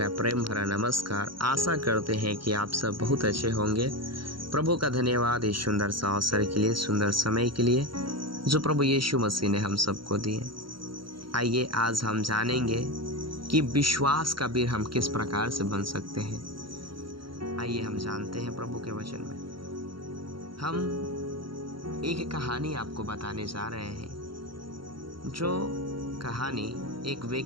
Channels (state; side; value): late; left; 0.73 ms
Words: प्रेम भरा नमस्कार। आशा करते हैं कि आप सब बहुत अच्छे होंगे। प्रभु का धन्यवाद इस सुंदर सा अवसर के लिए, सुंदर समय के लिए जो प्रभु यीशु मसीह ने हम सबको दिए। आइए आज हम जानेंगे कि विश्वास का वीर हम किस प्रकार से बन सकते हैं। आइए हम जानते हैं प्रभु के वचन में। हम एक कहानी आपको बताने जा रहे हैं, जो कहानी एक